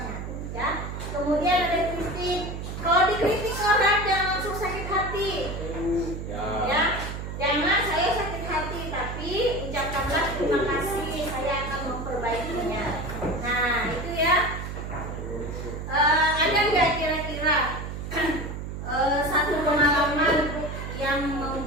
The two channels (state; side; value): noise; right; hum, 7 dB below the sound